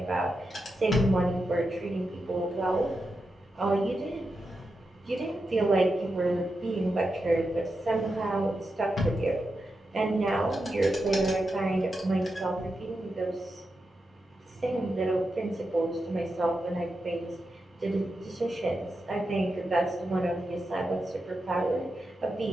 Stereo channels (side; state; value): both; normal; correlation 0.88